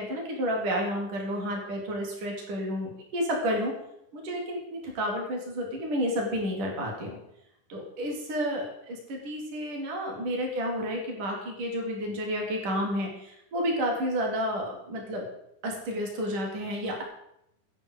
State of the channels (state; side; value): late; left; 10 ms